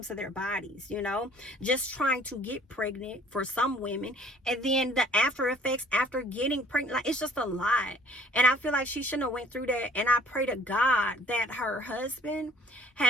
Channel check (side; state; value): both; normal; correlation 0.56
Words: to their bodies, you know, just trying to get pregnant for some women, and then the after effects after getting pregnant, like, it's just a lot. And I feel like she shouldn't have went through that. And I pray to God that her husband